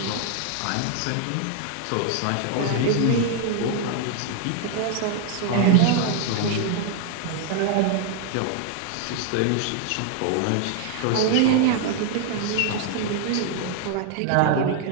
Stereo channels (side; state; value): both; different; correlation 0.00